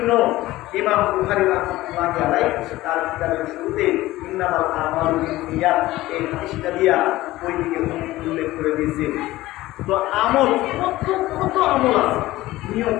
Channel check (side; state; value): right; quieter; 17.2 dB